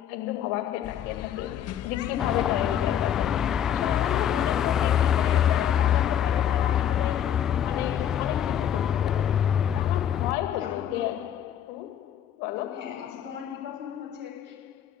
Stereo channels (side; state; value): right; quieter; 9.8 dB